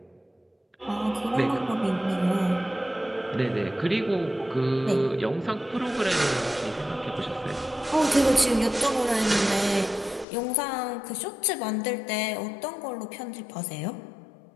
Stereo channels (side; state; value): right; drops out; at 10.2 s